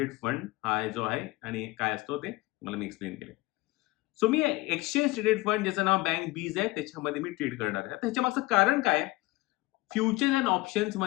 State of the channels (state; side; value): quieter; right; 20.8 dB